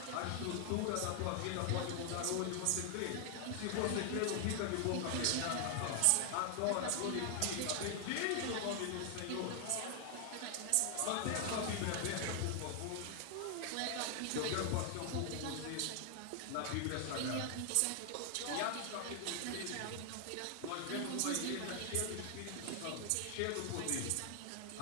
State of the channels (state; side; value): different; both; correlation 0.00